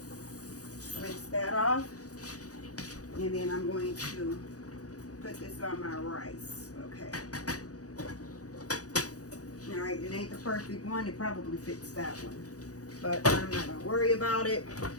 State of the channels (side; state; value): right; late; 0.67 ms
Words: Rinse that off. And then I'm going to put this on my rice. Okay. Alright, it ain't the perfect one. It probably fits that one. But I'm not going to worry about it.